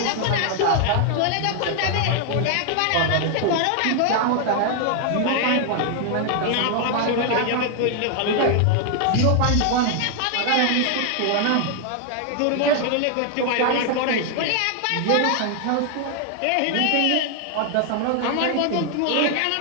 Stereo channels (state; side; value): different; both; correlation 0.00